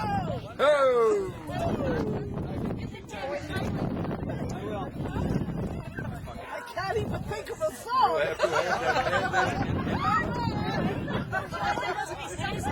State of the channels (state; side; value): identical; both; correlation 1.00